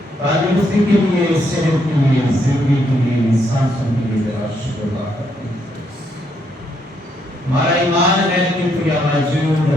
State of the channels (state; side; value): normal; both; correlation 0.75